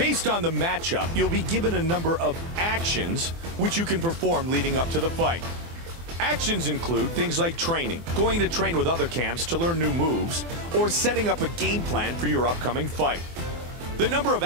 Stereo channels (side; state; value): left; late; 24 ms